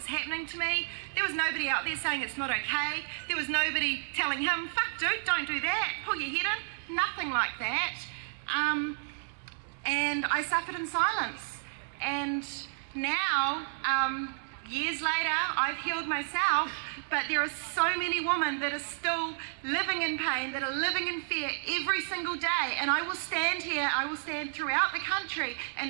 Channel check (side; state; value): left; silent; digital silence